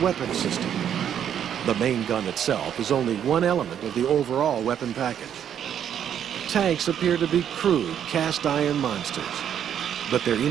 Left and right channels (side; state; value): left; quieter; 9.3 dB